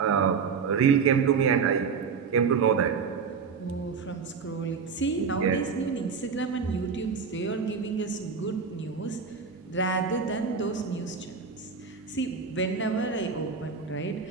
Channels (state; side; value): quieter; left; 5.7 dB